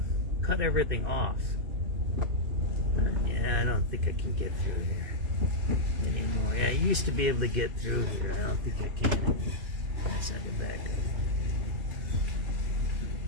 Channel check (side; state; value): left; late; 2.5 ms